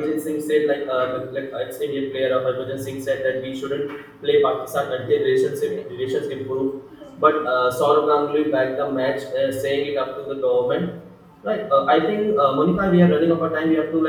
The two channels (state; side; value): identical; both; correlation 1.00